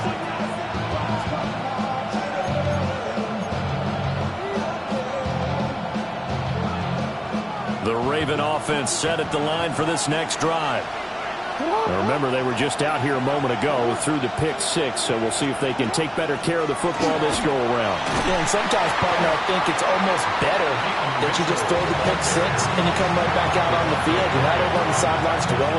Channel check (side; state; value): both; identical; correlation 1.00